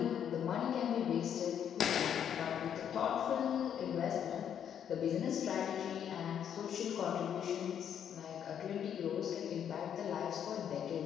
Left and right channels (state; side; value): quieter; right; 8.9 dB